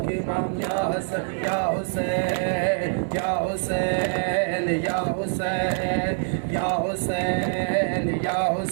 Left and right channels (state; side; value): silent; left; digital silence